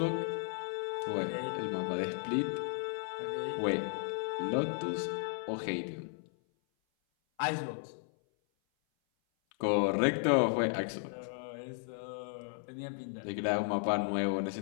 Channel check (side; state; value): right; silent; 55 dB below the other